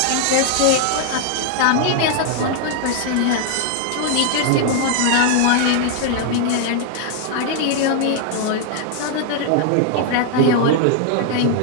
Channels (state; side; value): different; both; correlation 0.00